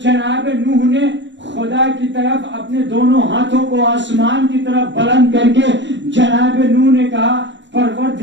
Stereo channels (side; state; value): left; late; 0.53 ms